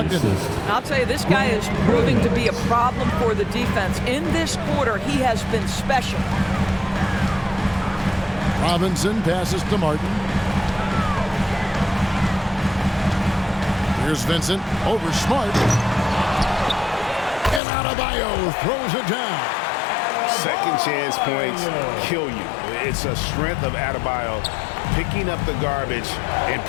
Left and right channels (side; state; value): right; drops out; at 17.6 s